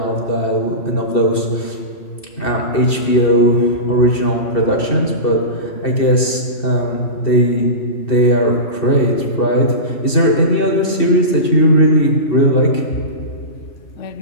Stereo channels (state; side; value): late; right; 2.7 ms